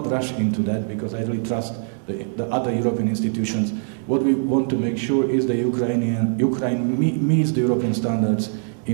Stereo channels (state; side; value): silent; left; digital silence